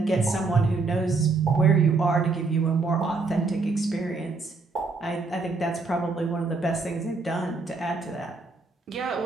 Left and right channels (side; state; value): left; quieter; 3.9 dB